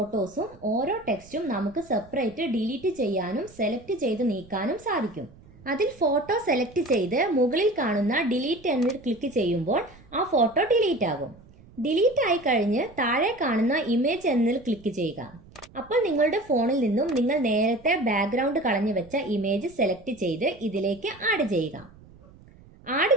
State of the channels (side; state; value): right; noise; rumble, 24 dB below the sound